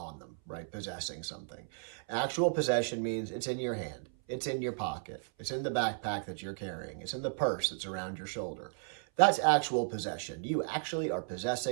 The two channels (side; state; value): left; silent; 55 dB below the other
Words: them, right? Possessing something. Actual possession means it's in your hand, it's in your pocket, it's in the backpack that you're carrying, it's in the purse that's around your shoulder. That's actual possession. You actually are